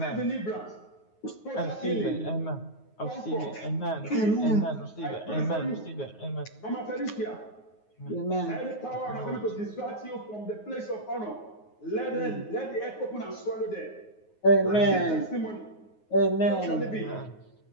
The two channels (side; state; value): right; late; 9.4 ms